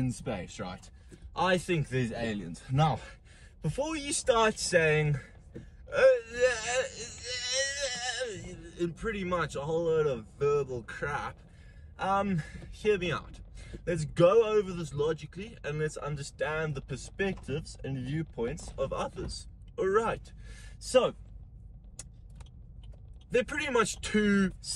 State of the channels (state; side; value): identical; both; correlation 1.00